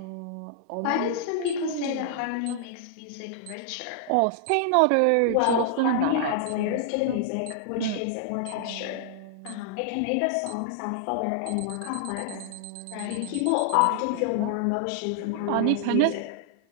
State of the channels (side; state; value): both; different; correlation -0.01